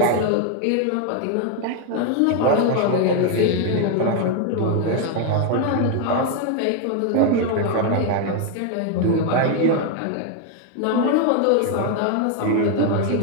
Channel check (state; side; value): different; both; correlation 0.01